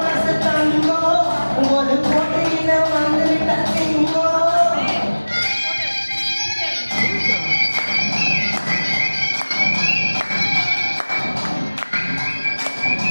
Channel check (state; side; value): inverted; both; correlation -1.00